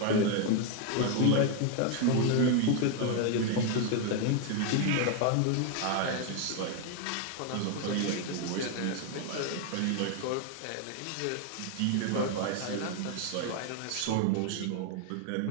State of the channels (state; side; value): different; both; correlation 0.01